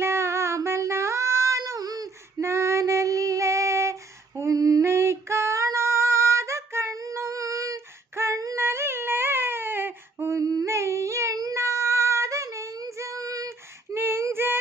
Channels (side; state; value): left; quieter; 3.4 dB